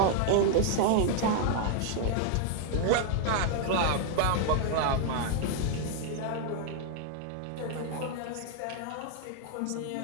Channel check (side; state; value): both; different; correlation 0.00